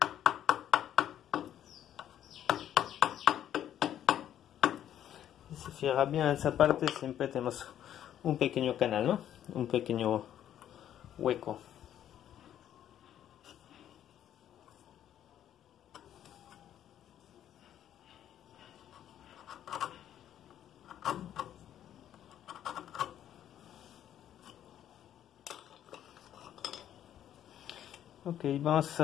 Si se fija bien en esa parte, siempre tenemos un pequeño canal, ¿no? Un pequeño hueco. Ok, vamos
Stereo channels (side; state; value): right; quieter; 10.8 dB